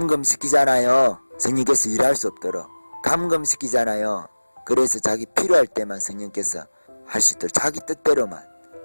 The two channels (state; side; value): inverted; both; correlation -1.00